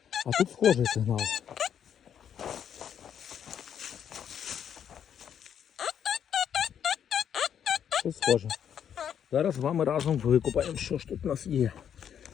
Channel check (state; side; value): quieter; right; 8.8 dB